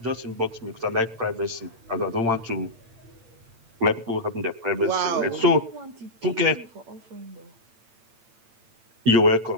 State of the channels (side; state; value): left; late; 8.8 ms